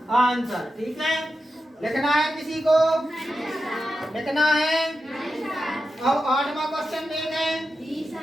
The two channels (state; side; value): normal; both; correlation 0.90